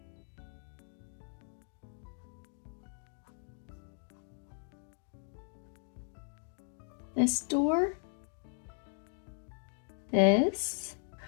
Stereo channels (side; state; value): right; silent; 53 dB below the other